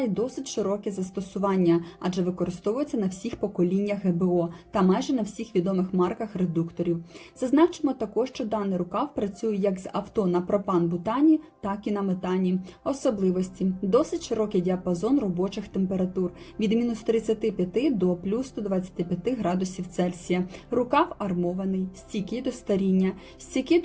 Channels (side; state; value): both; identical; correlation 1.00